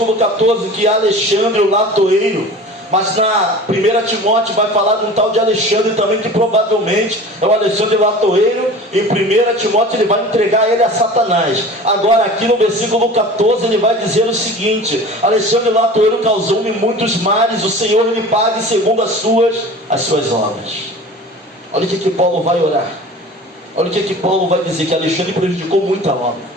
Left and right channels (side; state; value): both; normal; correlation 0.39